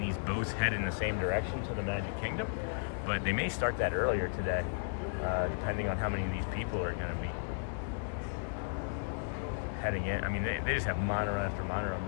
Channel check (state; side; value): silent; right; digital silence